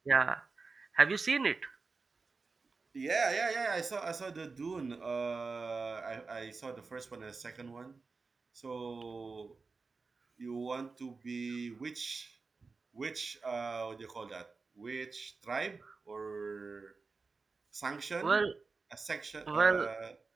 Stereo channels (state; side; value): quieter; left; 4.3 dB